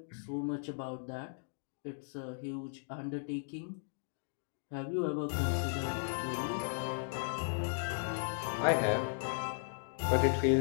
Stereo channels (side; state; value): right; silent; digital silence